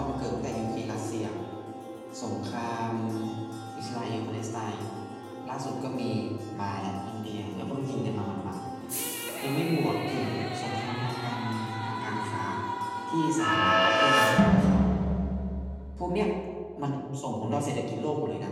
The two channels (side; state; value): both; identical; correlation 1.00